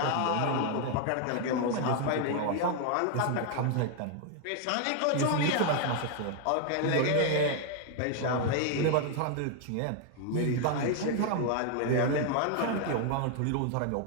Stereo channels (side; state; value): both; different; correlation 0.00